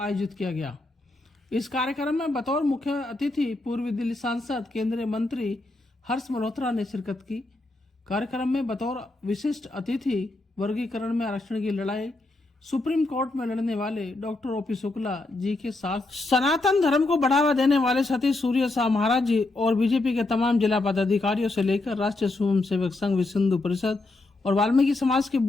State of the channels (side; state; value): right; quieter; 3.0 dB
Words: आयोजित किया गया। इस कार्यक्रम में बतौर मुख्य अतिथि पूर्वी दिल्ली सांसद केंद्रीय मंत्री हर्ष मल्होत्रा ने शिरकत की। कार्यक्रम में बतौर विशिष्ट अतिथि वर्गीकरण में आरक्षण की लड़ाई सुप्रीम कोर्ट में लड़ने वाले डॉक्टर ओपी शुक्ला जी के साथ सनातन धर्म को बढ़ावा देने वाले सतीश सूर्य शाह महाराज जी और बीजेपी के तमाम जिला पदाधिकारियों से लेकर राष्ट्रीय स्वयं सेवक संघ विश्व हिंदू परिषद और वाल्मीकि समाज के